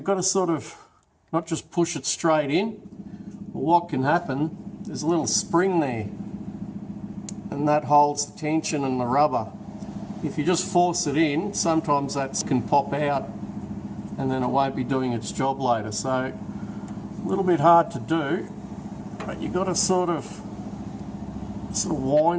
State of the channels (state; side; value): identical; both; correlation 1.00